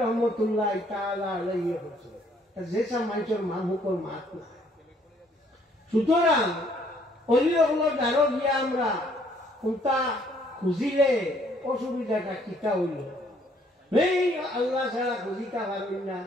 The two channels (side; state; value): both; normal; correlation 0.64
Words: রহমতুল্লাহ তাআলা আলাইহি কইছিল যেসব মানুষের মানুষের মাত না। সুতরাং অলিসকলের দ্বারা গিয়া আমরা কোনটা খুঁজিলে অসুবিধাটা কিতা হইল। এই আল্লাহ ছাড়া খুঁজিতে পারেন না,